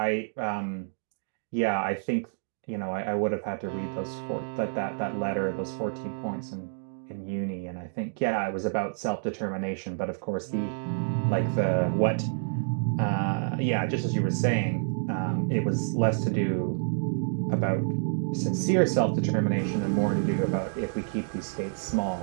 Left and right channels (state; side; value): silent; left; digital silence